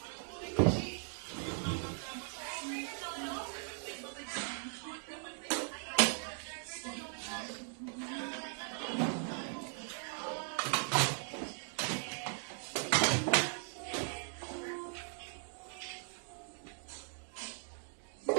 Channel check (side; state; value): left; silent; 52 dB below the other